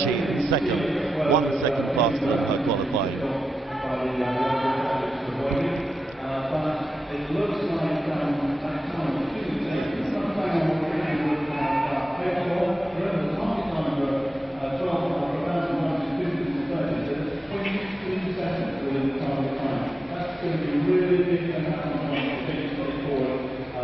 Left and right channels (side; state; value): both; normal; correlation 0.91